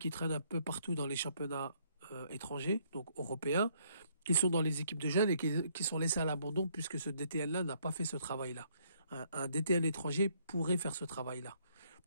traînent un peu partout dans les championnats étrangers, donc européens, qui sont dans les équipes de jeunes et qui sont laissés à l'abandon puisque ce DTN-là n'a pas fait ce travail-là. Un DTN étranger pourrait faire ce travail-là.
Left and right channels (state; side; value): inverted; both; correlation -0.68